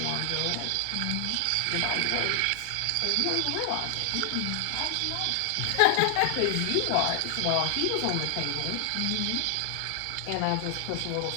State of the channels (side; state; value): both; different; correlation 0.00